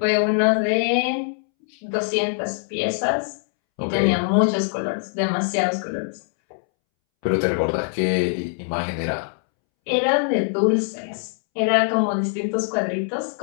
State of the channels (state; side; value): silent; right; 64 dB below the other